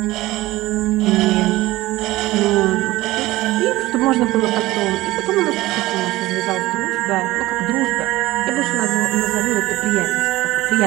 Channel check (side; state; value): left; quieter; 18.0 dB